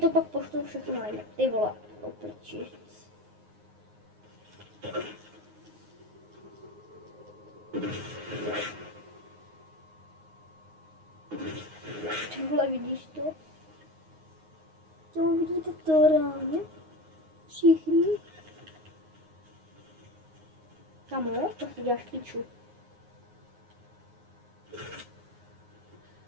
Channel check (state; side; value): late; left; 9.5 ms